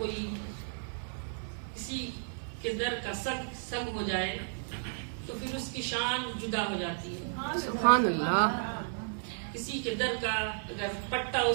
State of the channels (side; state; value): left; silent; 56 dB below the other